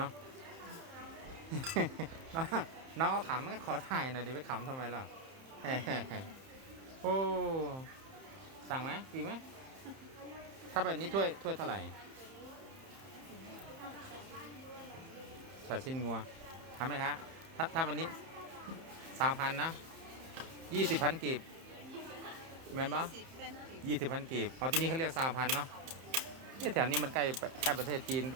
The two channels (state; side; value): late; left; 31 ms